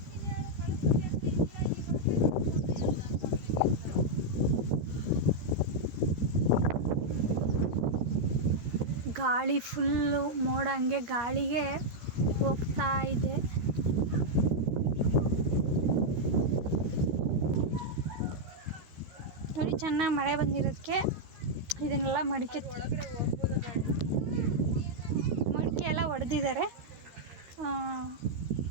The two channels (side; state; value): left; late; 13 ms